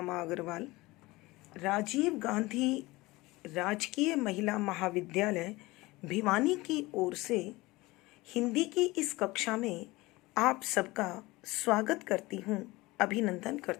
अग्रवाल राजीव गांधी राजकीय महिला महाविद्यालय भिवानी की ओर से हिंदी की इस कक्षा में आप सबका स्वागत करती हूँ, अभिनंदन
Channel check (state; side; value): quieter; right; 20.9 dB